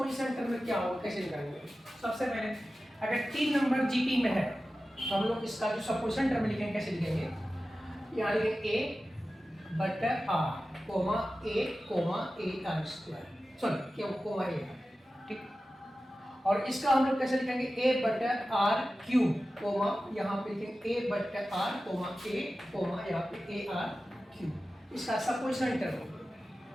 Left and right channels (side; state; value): both; normal; correlation 0.94